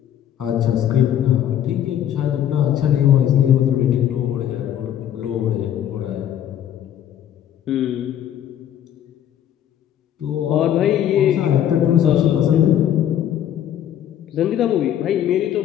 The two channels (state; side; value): quieter; right; 10.6 dB